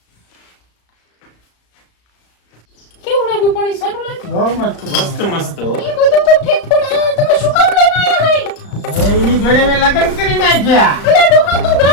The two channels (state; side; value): late; right; 35 ms